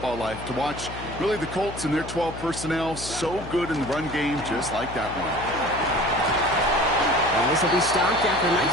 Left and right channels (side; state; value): left; noise; hum, 11 dB below the sound